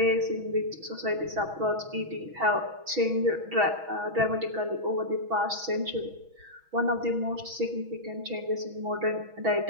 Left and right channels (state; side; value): late; left; 6.2 ms